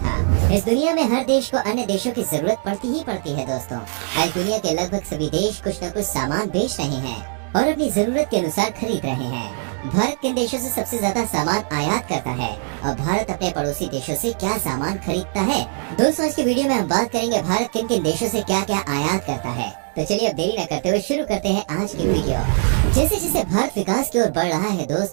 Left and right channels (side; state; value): left; silent; digital silence